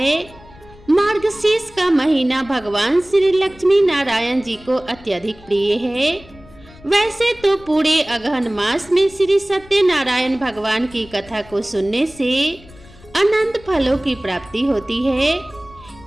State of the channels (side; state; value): left; noise; rumble, 23 dB below the sound